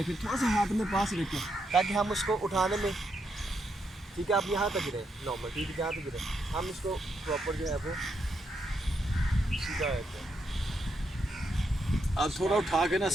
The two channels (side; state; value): both; normal; correlation 0.80